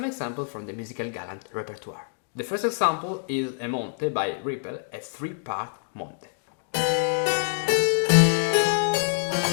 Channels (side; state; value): right; silent; digital silence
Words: examples from the musical Galant repertoire. The first example is a Monte by Rippel, a 3-part Monte.